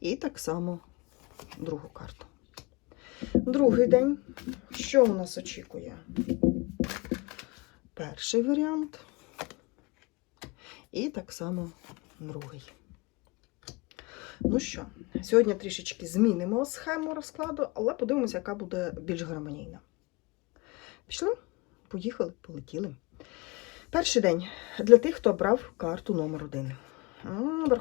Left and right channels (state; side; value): quieter; right; 26.0 dB